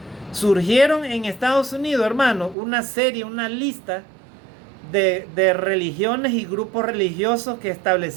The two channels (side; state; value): left; drops out; at 2.6 s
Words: surgieron en Estados Unidos, hermanos, una lista de religiones y grupos religiosos que